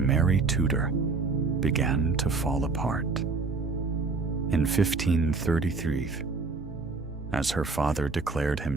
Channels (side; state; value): left; quieter; 4.1 dB